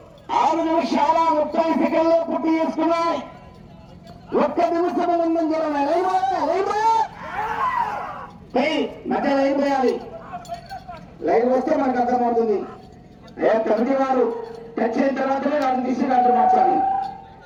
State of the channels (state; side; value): identical; both; correlation 1.00